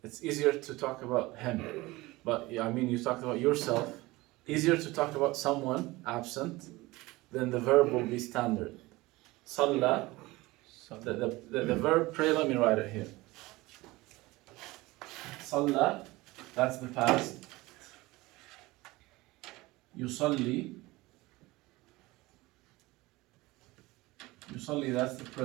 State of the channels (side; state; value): left; quieter; 20.6 dB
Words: it's easier to talk about him. But yeah, I mean, you talked about yourself. Easier to talk about someone absent, then the verb will be standard. صلى. The verb pray, let me write it here. صلى, that's the past. يصلي. يصلي, that's the